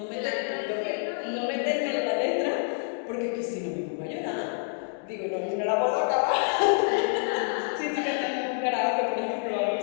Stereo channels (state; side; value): silent; right; 55 dB below the other